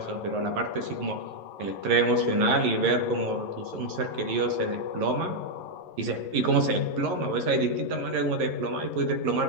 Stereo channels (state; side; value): late; left; 11 ms